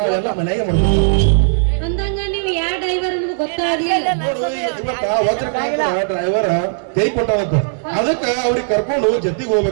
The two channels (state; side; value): silent; left; digital silence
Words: ಮನೆಗೆ ಮಾಡ್ತೀವಿ. ಅಂದಂಗ ನೀವು ಯಾವ ಡ್ರೈವರ್ ಅನ್ನೋದು ಗೊತ್ತಾಗ್ಲಿಲ್ಲ. ಇವತ್ತ ವಜ್ರಕಾಂತ ಡ್ರೈವರ್ ಕೈ ಕೊಟ್ಟವಂತ ಅದಕ್ಕ ಅವ್ರಿಗೆ ಕರ್ಕೊಂಡು ಜೊತೆಗೆ